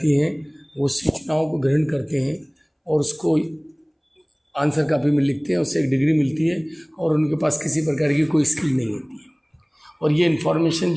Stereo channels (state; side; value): identical; both; correlation 1.00